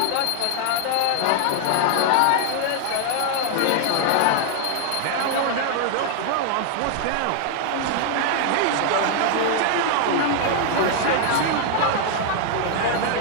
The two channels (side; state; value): both; different; correlation 0.00